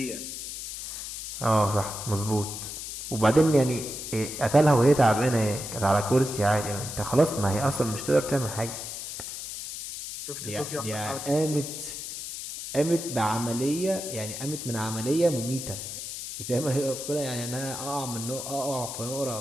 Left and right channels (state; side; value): noise; left; hiss, 8 dB below the sound